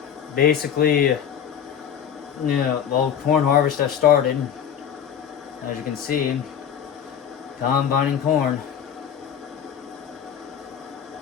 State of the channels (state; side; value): quieter; right; 8.6 dB